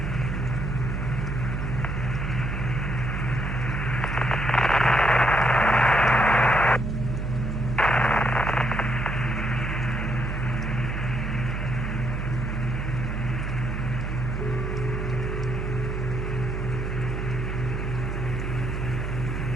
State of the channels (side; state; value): right; noise; hum, 4 dB below the sound